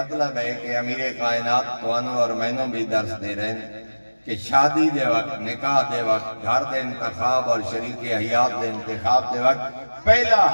ہے کہ امیر کائنات توانو اور مینوں بھی درس دے رہے ہیں کہ شادی دے وقت نکاح دے وقت گھر دے انتخاب اور شریک حیات دے انتخاب دے وقت پہلا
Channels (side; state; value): both; inverted; correlation -1.00